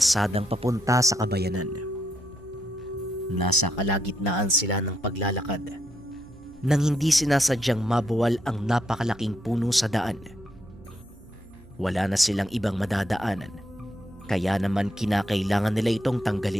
papunta sa kabayanan. Nasa kalagitnaan sila ng paglalakad nang hindi sinasadyang mabuwal ang napakalaking puno sa daan. Wala na silang ibang madadaanan, kaya naman kinakailangan nila itong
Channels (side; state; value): right; noise; hum, 24 dB below the sound